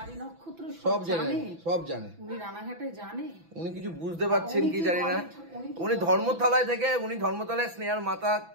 সব জানে, সব জানে, উনি কিছু বুঝতে পারছেন কি জানি না। উনি ধর্মতলায় থেকে ধর্মতলায় স্নেহার মাথা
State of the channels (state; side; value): late; left; 6.0 ms